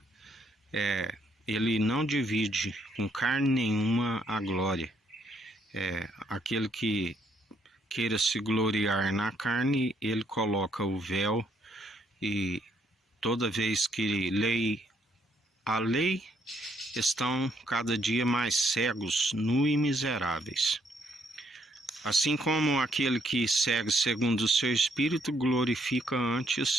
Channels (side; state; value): both; normal; correlation 0.71